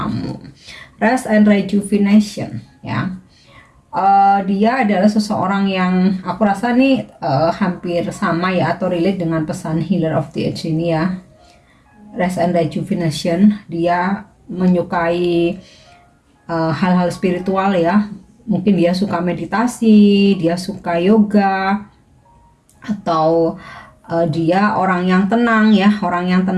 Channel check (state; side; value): identical; both; correlation 1.00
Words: Rest and Rejuvenation ya. Dia adalah seseorang yang aku rasa nih hampir sama ya, atau relate dengan pesan Healer of the Age ini ya. Rest and Rejuvenation, dia menyukai hal-hal spiritual ya. Mungkin dia suka meditasi, dia suka yoga, atau dia orang yang tenang ya, orang